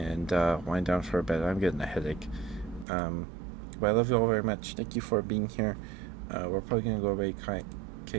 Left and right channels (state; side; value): drops out; left; at 2.9 s